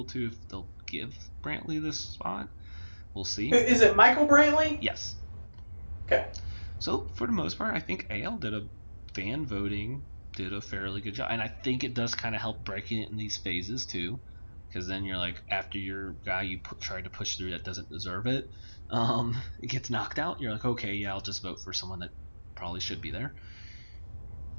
to, if they'll give Brantley this spot. We'll see. Is it Michael Brantley? Yes. Okay. So for the most part, I think AL did a fairly good job, and I think it does kind of help breaking it in these phases too, because then you're like, after your guy you tried to push through that doesn't deserve it, it gets knocked out. You're like, okay, yeah, I'll just vote for someone that probably should be there.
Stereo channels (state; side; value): inverted; both; correlation -1.00